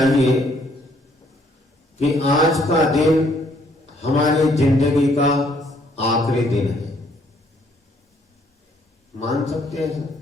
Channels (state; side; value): normal; both; correlation 0.66